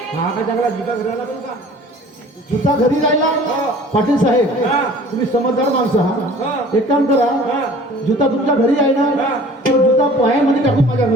हा का चांगला जुता घराला पण का? जुता घरी राहिला पाटील साहेब हा. तुम्ही समजदार माणसं हा. हा एक काम करा हा. जुता तुमच्या घरी आहे ना हा. तो जुता पायामध्ये टाकून माझ्या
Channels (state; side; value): normal; both; correlation 0.48